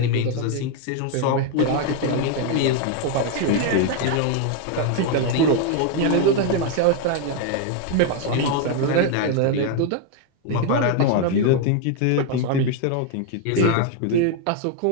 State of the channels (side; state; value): both; different; correlation 0.01